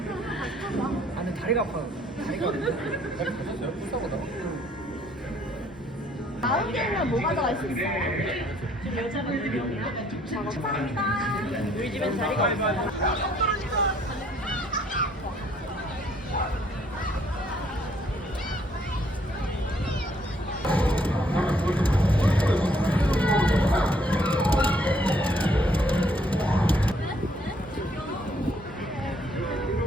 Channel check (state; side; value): normal; both; correlation 0.65